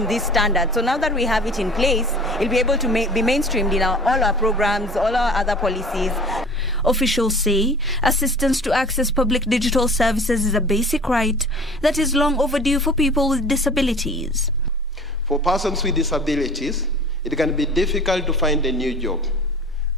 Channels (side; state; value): both; normal; correlation 0.44